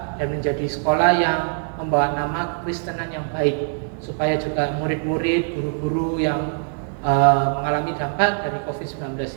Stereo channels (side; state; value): left; silent; 64 dB below the other